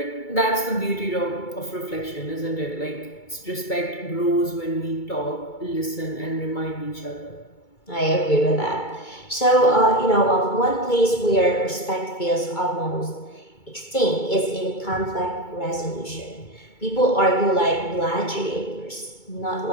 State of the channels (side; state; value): right; late; 2.3 ms